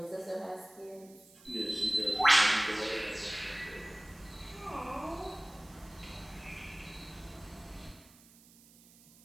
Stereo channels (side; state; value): right; noise; hiss, 24 dB below the sound